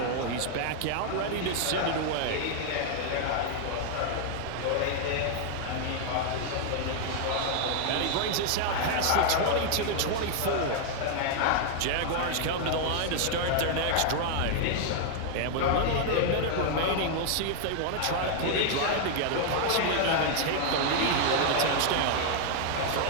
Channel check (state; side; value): different; both; correlation 0.00